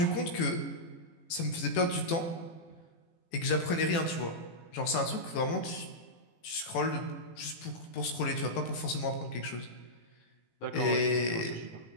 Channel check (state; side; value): late; right; 18 ms